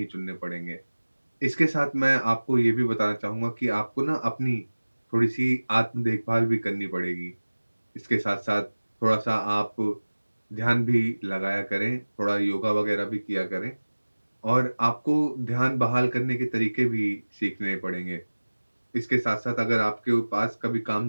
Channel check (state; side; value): inverted; both; correlation -1.00